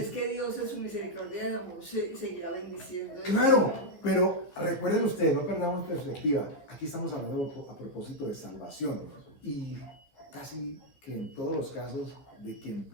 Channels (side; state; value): right; late; 14 ms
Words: que Dios en su misericordia de amor seguirá bendiciendo. Claro, pero recuerden ustedes, no perdamos perspectiva. Aquí estamos hablando a propósito de salvación. Y casi que en todos los casos de quien